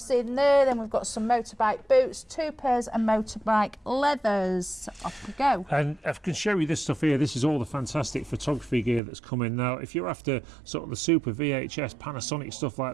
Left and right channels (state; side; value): drops out; left; at 9.0 s